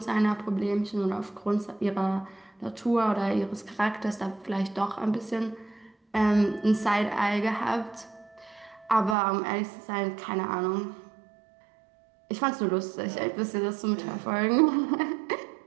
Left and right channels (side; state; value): left; drops out; at 9.2 s